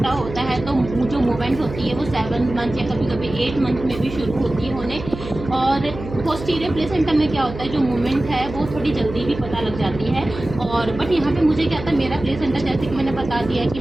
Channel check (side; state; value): right; noise; hum, 11 dB below the sound